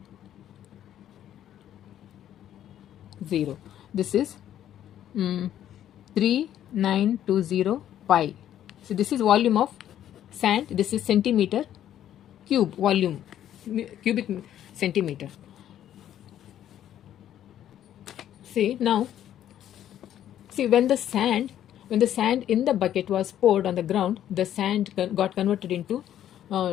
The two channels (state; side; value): quieter; right; 11.1 dB